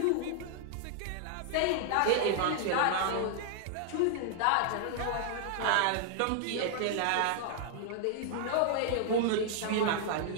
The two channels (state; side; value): different; both; correlation 0.00